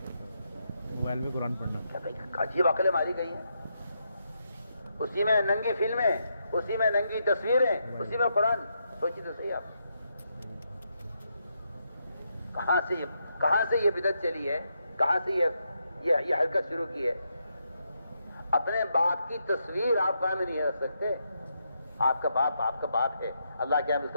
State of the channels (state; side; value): inverted; both; correlation -0.81